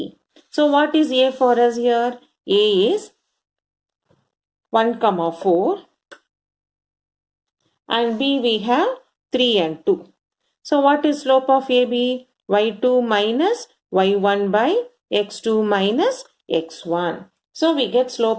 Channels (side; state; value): both; identical; correlation 1.00